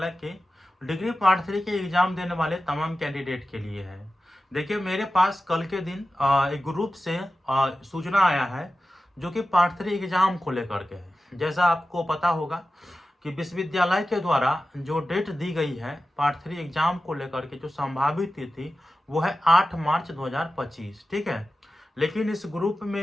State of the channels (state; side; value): normal; both; correlation 0.93